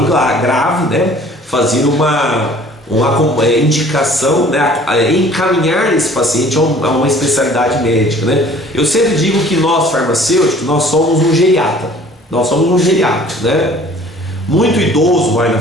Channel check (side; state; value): both; normal; correlation 0.51